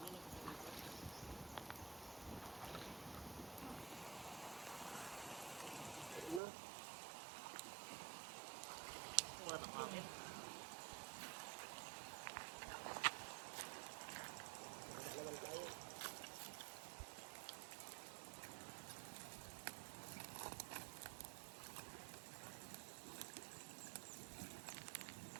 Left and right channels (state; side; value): drops out; left; at 6.4 s